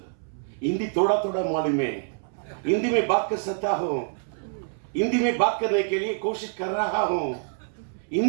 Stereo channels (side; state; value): left; silent; 61 dB below the other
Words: हिंदी थोड़ा थोड़ा मालूम है, हिंदी में बात कर सकता हूँ, हिंदी में बात करने के लिए कोशिश कर रहा हूँ,